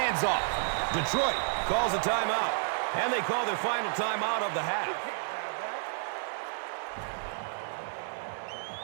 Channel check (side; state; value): left; silent; digital silence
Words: off. Detroit calls a timeout. And they call their final timeout of the half.